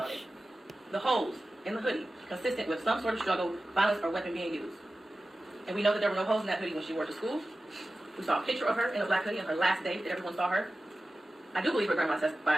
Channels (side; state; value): both; normal; correlation 0.95